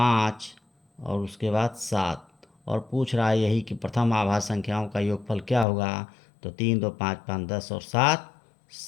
और उसके बाद 7। और पूछ रहा है यही कि प्रथम आभाज्य संख्याओं का योगफल क्या होगा। तो 3 2 5 5 10 और 7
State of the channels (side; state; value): right; drops out; at 5.7 s